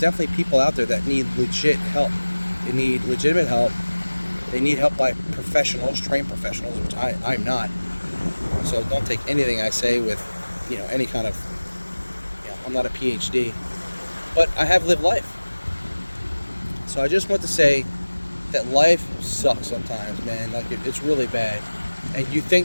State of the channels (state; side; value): inverted; both; correlation -1.00